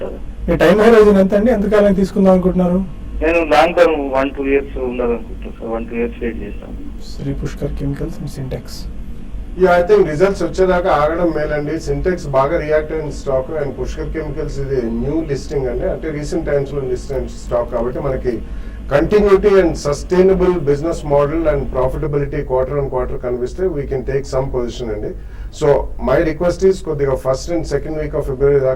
మీ టైం హోరైజన్ ఎంత అండి? ఎంతకాలం తీసుకుందాం అనుకుంటున్నారు? నేను లాంగ్ టర్మ్ 1-2 years ఉండాలనుకుంటున్నాను సార్. 1-2 years వెయిట్ చేస్తాను. Shri Pushkar chemicals and Sintex. I think results వచ్చేదాకా ఆగడం మేలండి. సింటెక్స్ బాగా రియాక్ట్ అయిన స్టాక్ అండ్ పుష్కర్ కెమికల్స్ ఇది న్యూ లిస్టింగ్ అండి, అంటే రీసెంట్ టైమ్స్ లో లిస్ట్ అయిన స్టాక్ కాబట్టి మనకి continuity and sustainable business model and profitability quarter on quarter కనిపిస్తే we can take some position అండి. సో మై రిక్వెస్ట్ ఈస్ కొద్దిగా 1st and 2nd week of February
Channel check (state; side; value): identical; both; correlation 1.00